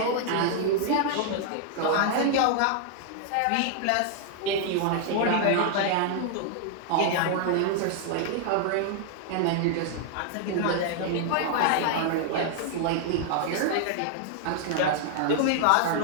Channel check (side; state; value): both; different; correlation 0.00